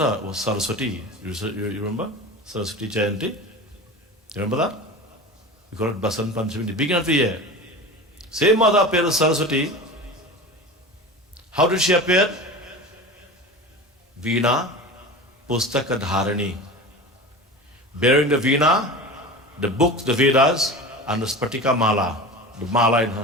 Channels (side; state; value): both; normal; correlation 0.32